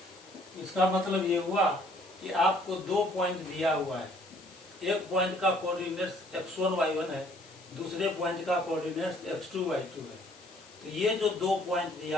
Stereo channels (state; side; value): noise; left; hiss, 23 dB below the sound